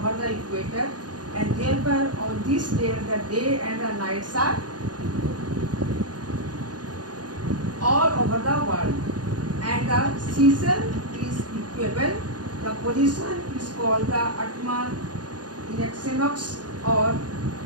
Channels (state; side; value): late; left; 0.69 ms